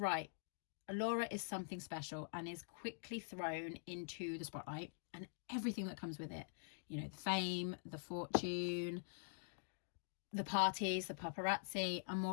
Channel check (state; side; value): silent; right; digital silence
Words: Alora is something special and is quickly thrown into the spotlight and everything that comes with it. You know, the fame, the fortune, the parties, the paparazzi, and